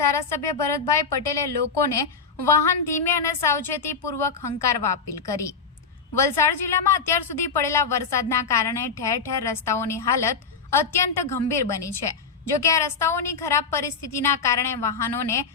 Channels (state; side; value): quieter; right; 5.3 dB